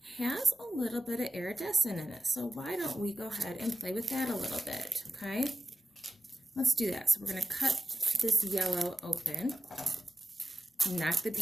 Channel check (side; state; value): both; normal; correlation 0.92